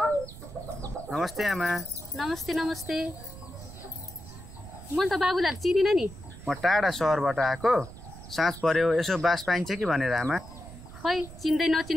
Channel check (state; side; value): noise; right; rumble, 15 dB below the sound